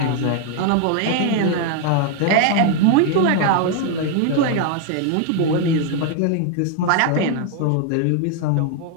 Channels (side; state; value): both; different; correlation 0.01